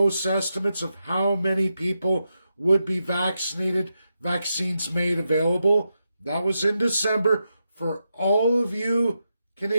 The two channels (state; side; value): inverted; both; correlation -0.86